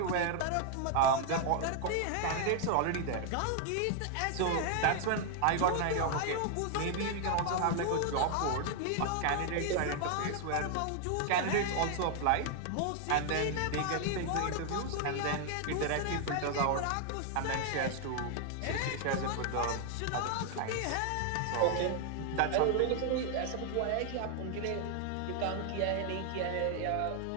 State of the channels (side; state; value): both; different; correlation 0.00